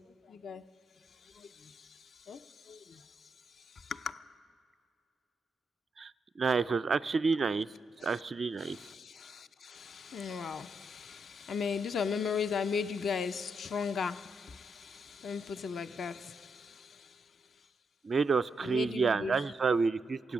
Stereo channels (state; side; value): normal; both; correlation 0.81